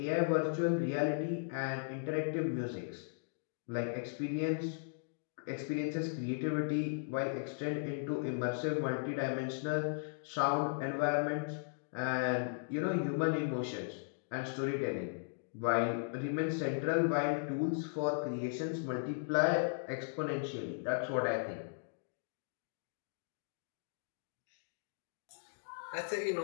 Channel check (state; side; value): silent; right; digital silence